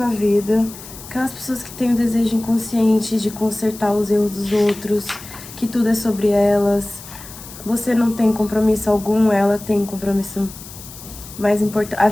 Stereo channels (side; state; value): left; noise; hiss, 16 dB below the sound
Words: vida. Aquelas pessoas que têm o desejo inconsciente de consertar os erros dos outros, que tudo é sobre elas. Você não tem compromisso algum, ela tem compromisso mais importante. A